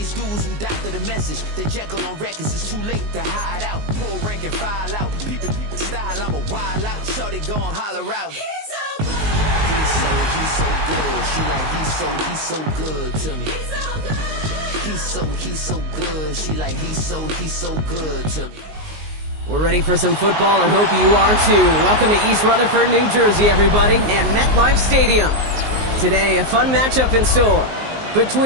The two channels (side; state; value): left; late; 19 ms